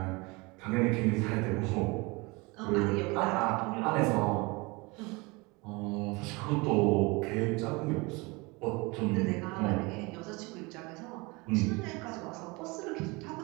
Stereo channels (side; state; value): left; quieter; 25.8 dB